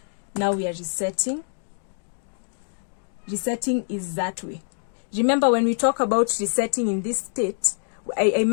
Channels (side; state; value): right; silent; digital silence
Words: now we are resetting. Resetting is that way. Remember, when we talk about resetting in this state, I